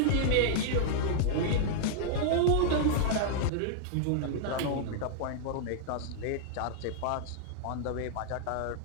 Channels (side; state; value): both; different; correlation -0.01